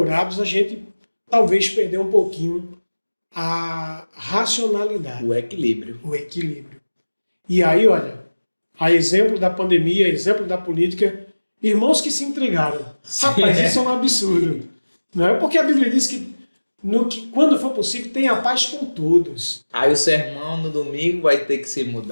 a gente talvez perdeu um pouquinho a racionalidade. O equilíbrio. E aí, olha, a exemplo da pandemia, a exemplo da política, irmãos que se entregaram. Rapaz, isso é um absurdo. Não é? Porque a Bíblia diz que quando for possível, tenha paz com todos. Aí o sermão no domingo vai ter que ser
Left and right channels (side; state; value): both; inverted; correlation -1.00